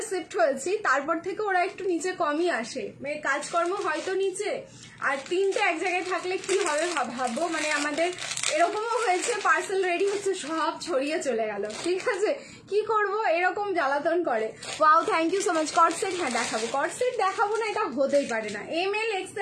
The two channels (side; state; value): both; identical; correlation 1.00